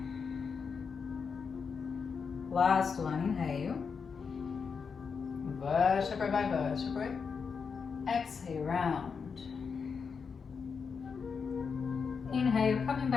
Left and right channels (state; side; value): quieter; right; 5.8 dB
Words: Last one, inhale. Vertebrae by vertebrae. Exhale, round. Inhale, coming